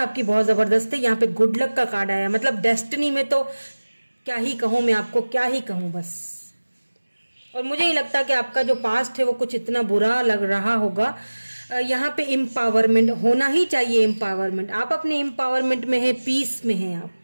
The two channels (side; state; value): both; inverted; correlation -1.00